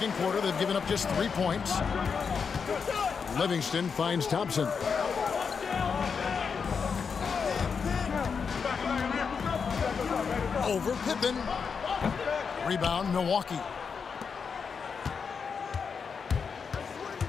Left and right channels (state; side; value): quieter; right; 5.9 dB